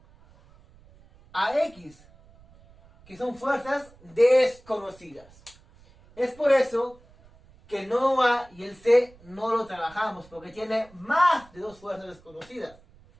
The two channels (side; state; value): right; noise; rumble, 26 dB below the sound